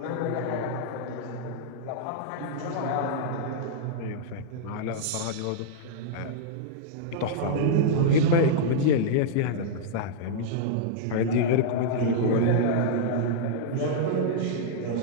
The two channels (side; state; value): both; different; correlation -0.02